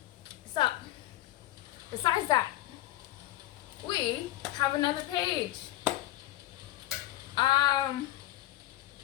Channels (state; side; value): quieter; right; 15.6 dB